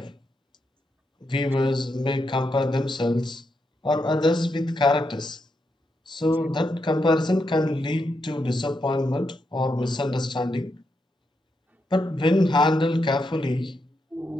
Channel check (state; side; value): normal; both; correlation 0.83